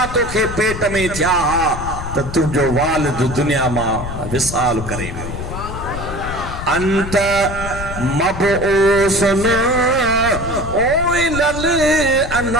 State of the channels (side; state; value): left; noise; rumble, 8 dB below the sound